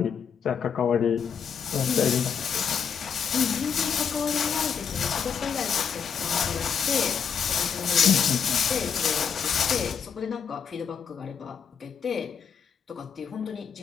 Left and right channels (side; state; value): right; quieter; 7.1 dB